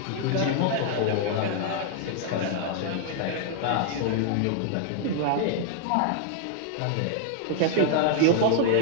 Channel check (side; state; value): both; different; correlation 0.00